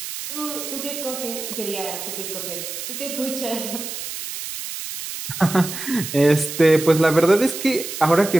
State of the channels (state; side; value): noise; right; hiss, 7 dB below the sound